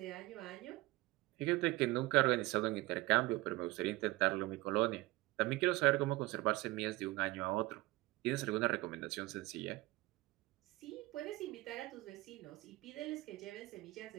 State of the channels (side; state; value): left; quieter; 20.1 dB